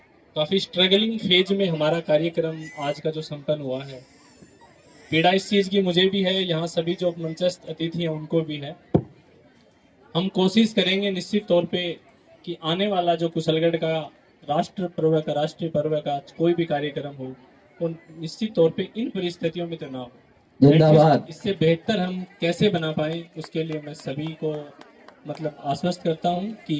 काफी स्ट्रगलिंग फेज में हमारा कार्यक्रम आज का जो संपन्न हुआ है। पीड़ा इस चीज की मुझे भी है, यहाँ सभी जो मंचस्थ अतिथि हैं उनको भी है। हम कोशिश करेंगे निश्चित तौर पे कि आने वाला जो कुशलगढ़ का राष्ट्रीय पर्व का कोई भी कार्यक्रम हो, तो निश्चित तौर पे इन परिस्थितियों में तो ना हो। जिंदाबाद। इससे बेहतर हम कैसे बना पाए, उसके लिए मैं सभी को मतलब आश्वस्त करता हूं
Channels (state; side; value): identical; both; correlation 1.00